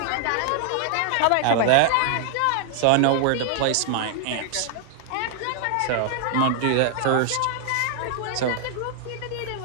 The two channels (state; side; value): different; both; correlation -0.01